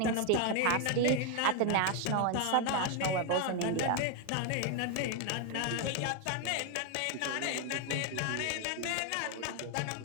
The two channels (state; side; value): different; both; correlation 0.01